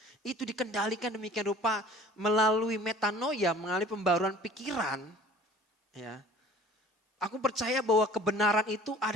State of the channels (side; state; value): both; normal; correlation 0.48